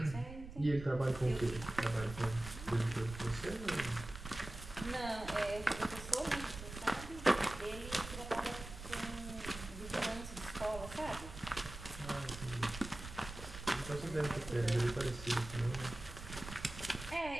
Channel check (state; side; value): noise; right; rumble, 11 dB below the sound